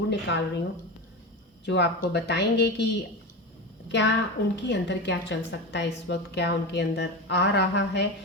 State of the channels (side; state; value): both; normal; correlation 0.22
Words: निकाल रही हूँ, जो आपको बताएंगे कि क्या उनके अंदर क्या चल सकता है इस वक्त, क्या उनके अंदर आ रहा है।